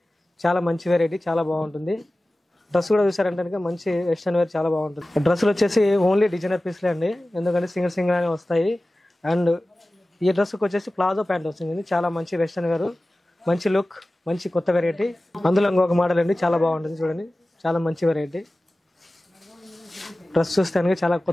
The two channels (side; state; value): both; normal; correlation 0.96